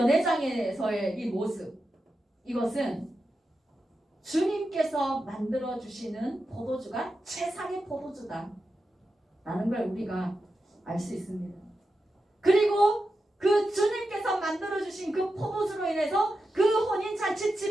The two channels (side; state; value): both; normal; correlation 0.90